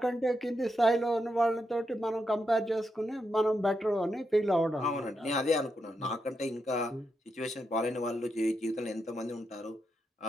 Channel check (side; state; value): both; normal; correlation 0.84